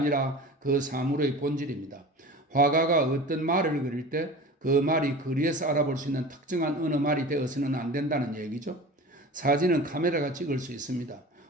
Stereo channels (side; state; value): both; normal; correlation 0.36